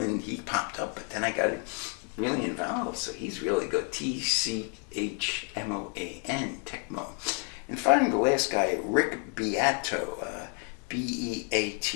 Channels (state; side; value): quieter; right; 39.8 dB